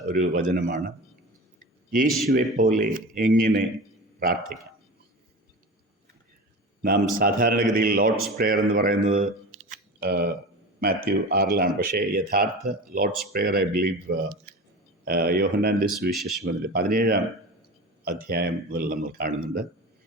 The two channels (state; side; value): normal; both; correlation 0.31